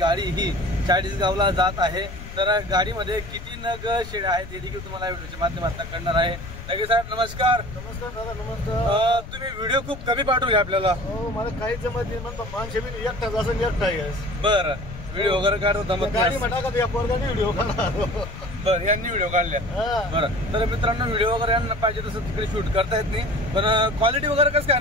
ही चाळीसगावला जात आहे। तर गाडीमध्ये किती नग शेळ्या आहेत हे देखील तुम्हाला व्हिडिओच्या माध्यमातून कळणार आहे। ढगे साहेब नमस्कार। नमस्कार दादा, नमस्कार। तुम्ही व्हिडिओ खूप कमी पाठवले आपल्याला। हो, मला काही जमत नाही, म्हणतो माणसे बी एकटा असं एकटा आहे। बरं, व्हिडिओ वगैरे काढतो गाडी म्हणा का त्या पोरगाने व्हिडिओ काढला। बरं, यांनी व्हिडिओ काढल्या। बरं, तर मित्रांनो व्हिडिओ वगैरे यांना पाहिजे तसं तिकडे शूट करता येत नाही, पण क्वालिटी वगैरे कसं काय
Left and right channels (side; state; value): left; noise; rumble, 12 dB below the sound